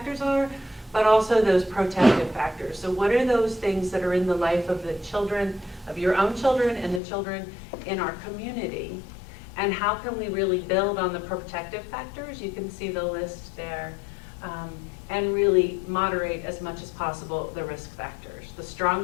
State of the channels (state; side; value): drops out; right; at 7.0 s